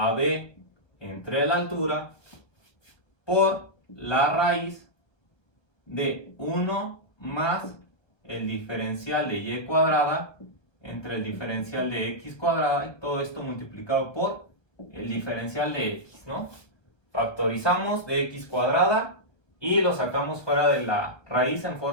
b entre la altura por la raíz de 1 más el diferencial de y cuadrada entre el diferencial de x cuadrada, y todo esto multiplicado por el diferencial de x, ¿no? Factorizamos de x cuadrada y lo sacamos fuera de la raíz en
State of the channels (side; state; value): right; late; 1.3 ms